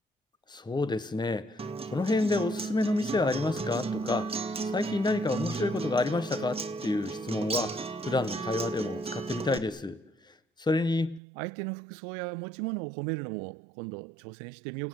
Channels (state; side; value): drops out; left; at 11.2 s